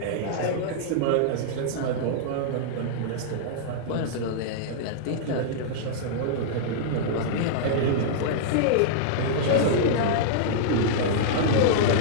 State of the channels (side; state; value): both; different; correlation -0.02